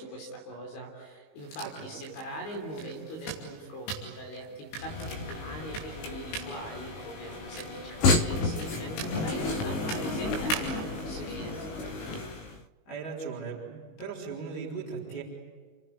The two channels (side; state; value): right; late; 19 ms